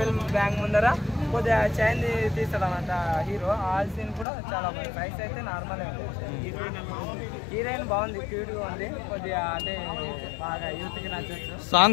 బ్యాంక్ ముందర కొద్దిగా చైన్ తీస్తాడు అన్నమాట హీరో. ఆ సీన్ కూడా చాలా బాగుంది. ఫైట్స్ అయితే నార్మలే ఉంది. హీరోయిన్ బాగుంది, క్యూట్గా ఉంది. కొద్దిగా అంటే బాగా యూత్కి నచ్చచ్చు.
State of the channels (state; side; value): drops out; right; at 4.2 s